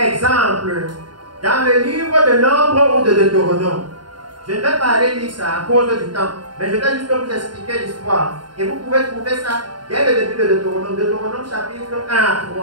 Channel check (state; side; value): late; left; 0.71 ms